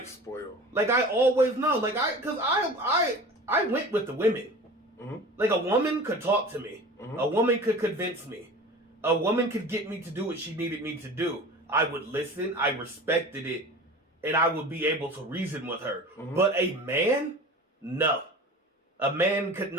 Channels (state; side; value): normal; both; correlation 0.38